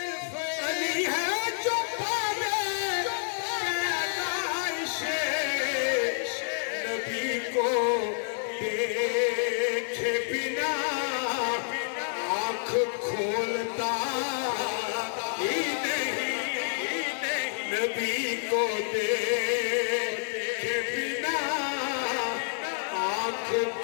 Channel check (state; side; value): silent; right; digital silence